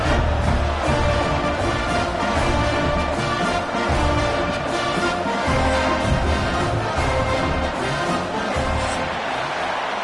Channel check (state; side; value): identical; both; correlation 1.00